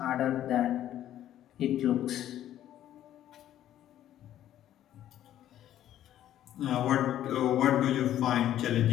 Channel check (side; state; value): right; quieter; 12.0 dB